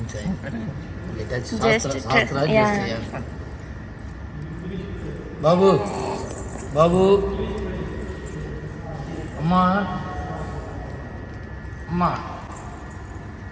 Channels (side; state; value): both; identical; correlation 1.00